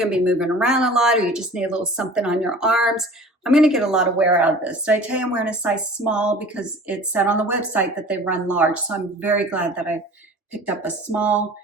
to be moving around a lot or you just need a little something on your arms, I'm going to get a lot of wear out of this. Did I tell you I'm wearing a size small because it said on the website that they run large. So I'm very glad that I picked up a small.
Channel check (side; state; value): both; normal; correlation 0.43